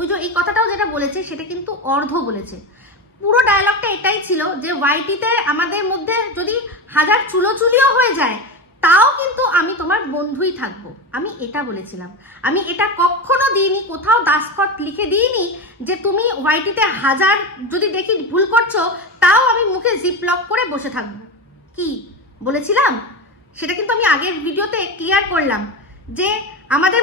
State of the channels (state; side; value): normal; both; correlation 0.20